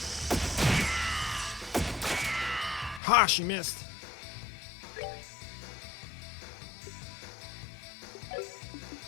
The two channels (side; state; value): right; drops out; at 3.0 s